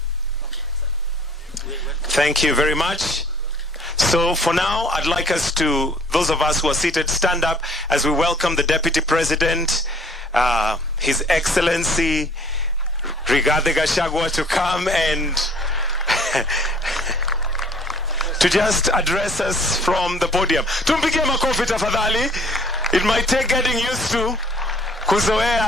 Thank you very much. So for now, I'd like us to, those of us who are seated, stand up as we welcome the Deputy President, His Excellency Rigathi Gachagua, to come and to just address us from the podium. Tumpigie makofi tafadhali. It might take getting used to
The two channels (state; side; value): normal; both; correlation 0.55